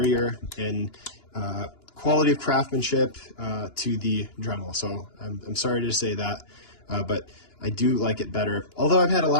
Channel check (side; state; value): right; late; 2.9 ms